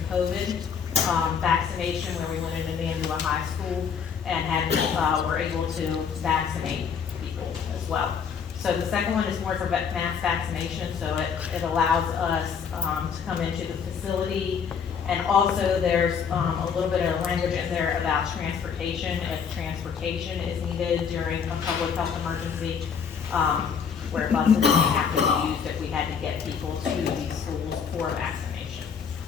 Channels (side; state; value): right; quieter; 6.8 dB